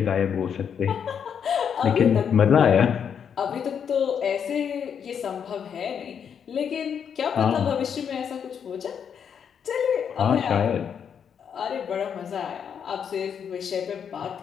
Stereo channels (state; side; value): quieter; right; 7.6 dB